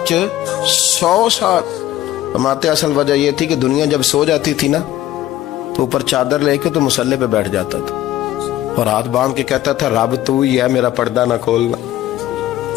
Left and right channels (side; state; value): right; quieter; 13.9 dB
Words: سال۔ فرماتے اصل وجہ یہ تھی کہ دنیا جب سو جاتی تھی نا تو اوپر چادر لے کے تو مسلح پہ بیٹھ جاتا تھا، اور ہاتھ باندھ کے کہتا تھا رب تو ہی ہے، میرا پردہ نہ کھولنا،